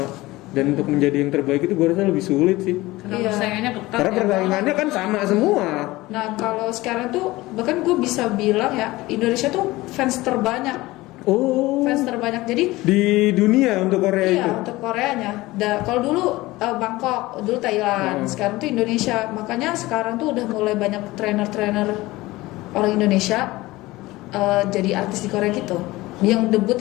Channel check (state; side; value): quieter; right; 19.3 dB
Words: Dan untuk menjadi yang terbaik itu gue rasa lebih sulit sih. Karena Iya. persaingannya ketat. Karena ya. persaingannya kan sama semua. Nah, kalau sekarang tuh bahkan gue bisa bilang ya, Indonesia tuh fans terbanyak. Oh. Fans terbanyak. Jadi Di dunia untuk Korea itu. iya, untuk Koreanya. Kalau dulu Bangkok, dulu Thailand, sekarang tuh Indonesia. Makanya sekarang tuh udah mulai banyak trainer-trainer orang Indonesia jadi artis di Korea gitu. Yang debut